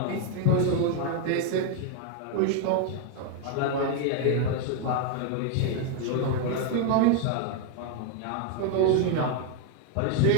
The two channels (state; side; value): different; both; correlation 0.01